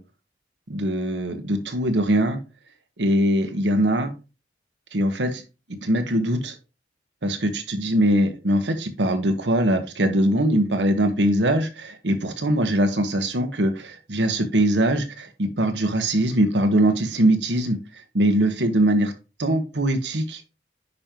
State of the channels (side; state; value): both; normal; correlation 0.60